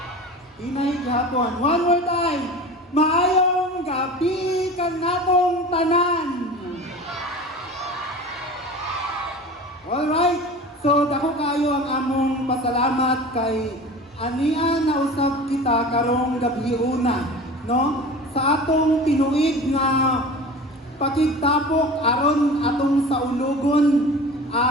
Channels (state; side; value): normal; both; correlation 0.36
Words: Inay gihapon. One more time. Maayong gabi kanatong tanan. Alright. So dako kayo ang among pasalamat kay ania na usab kita karong gabi una, no? Sa atong tinuig nga pakigtapok aron atong saulogon,